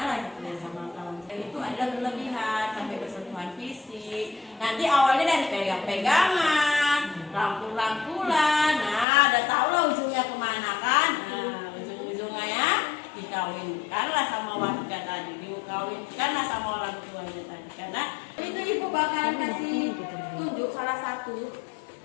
ya sama lawan jenis. Itu adalah berlebihan sampai bersentuhan fisik. Nanti awalnya dari pegang-pegangan, rangkul-rangkulan. Nah, udah tau lah ujungnya kemana kan? Nah, ujung-ujungnya ya dikawinkanlah sama warga tadi, dikawinkanlah sama orang tuanya tadi. Karena itu ibu bakalan kasih tunjuk salah satu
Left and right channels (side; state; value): right; drops out; at 9.1 s